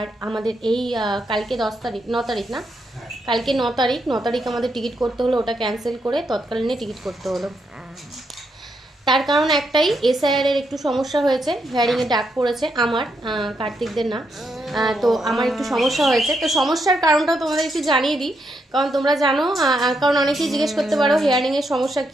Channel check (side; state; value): both; normal; correlation 0.80